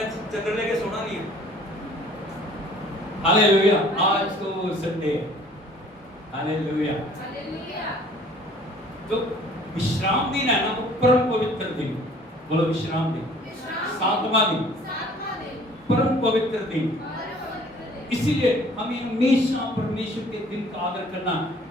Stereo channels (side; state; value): both; normal; correlation 0.53